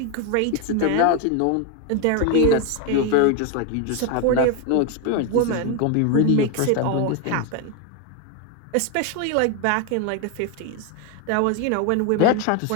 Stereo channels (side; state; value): both; different; correlation 0.01